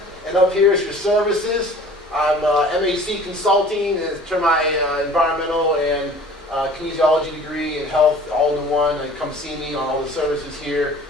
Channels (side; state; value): both; normal; correlation 0.47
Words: And up here is your services. I'm MAC Consulting, and turn my environmental and kinesiology degree and health all in one. And come see me on all the services here.